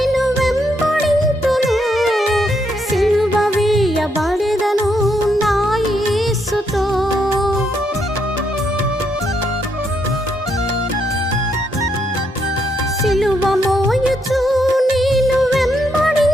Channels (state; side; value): normal; both; correlation 0.77